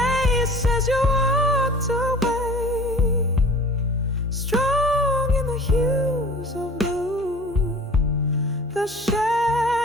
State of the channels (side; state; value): both; normal; correlation 0.44